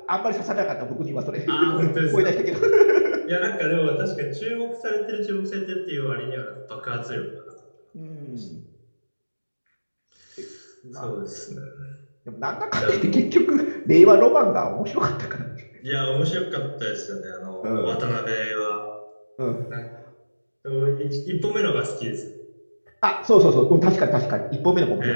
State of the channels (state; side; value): inverted; both; correlation -1.00